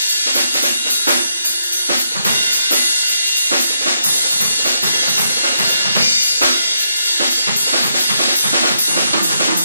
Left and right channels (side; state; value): both; inverted; correlation -0.79